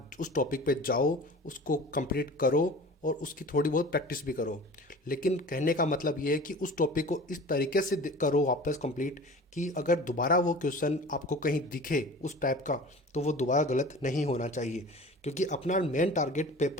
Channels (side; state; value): both; normal; correlation 0.39